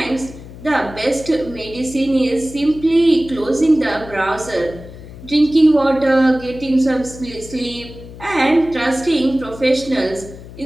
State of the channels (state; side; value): noise; left; hum, 16 dB below the sound